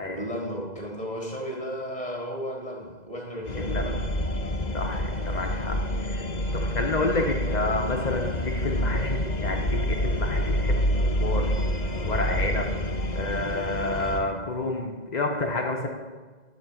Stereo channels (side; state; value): right; late; 2.0 ms